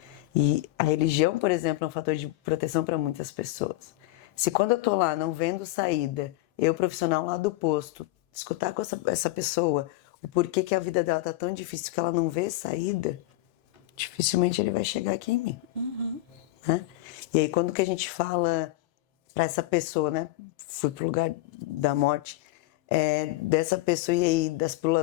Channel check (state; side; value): quieter; right; 17.2 dB